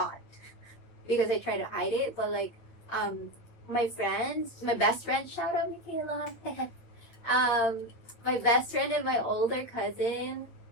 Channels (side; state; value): right; late; 8.7 ms